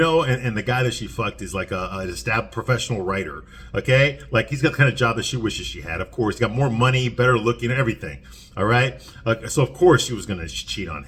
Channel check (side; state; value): both; identical; correlation 1.00